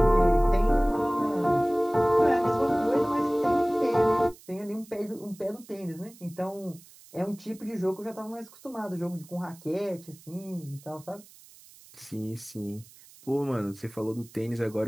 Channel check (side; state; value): right; noise; hiss, 23 dB below the sound